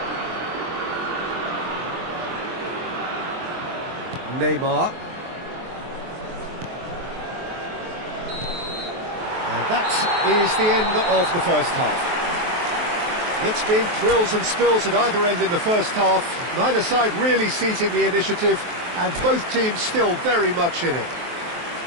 Neymar. And that is the end of the first half. It's been thrills and spills at either end in the first half. Neither side really seizing the initiative, and both teams still very much in it.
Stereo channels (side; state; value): left; late; 23 ms